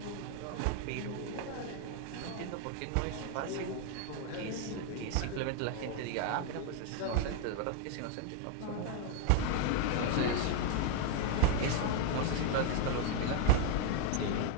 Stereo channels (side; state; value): both; different; correlation 0.00